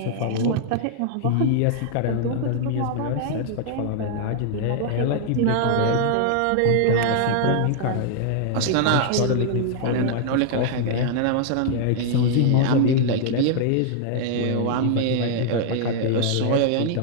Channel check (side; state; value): both; different; correlation -0.01